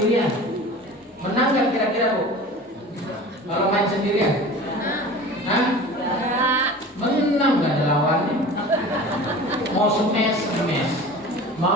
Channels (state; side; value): normal; both; correlation 0.38